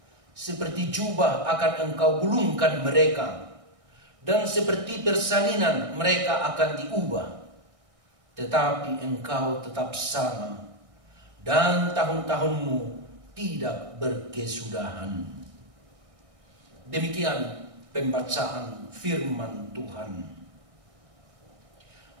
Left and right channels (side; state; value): left; late; 1.6 ms